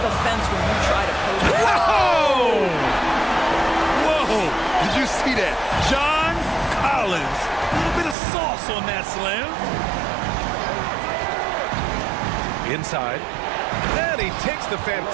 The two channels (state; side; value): drops out; left; at 8.2 s